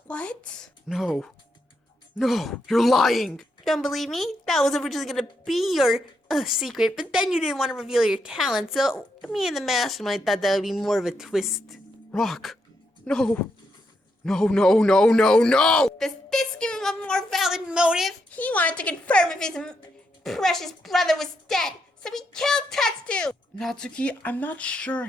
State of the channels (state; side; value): normal; both; correlation 0.80